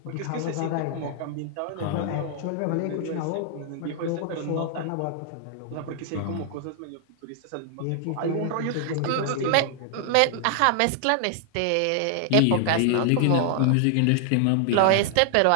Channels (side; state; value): both; different; correlation 0.00